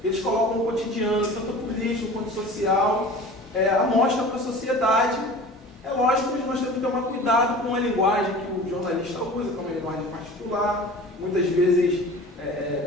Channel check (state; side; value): normal; both; correlation 0.40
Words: eles colocam o cotidiano, tanto político quanto social, a mostra para a sociedade. É lógico que nós temos que tomar cuidado com a linguagem que o jornalista usa, que é uma linguagem particular, muitas vezes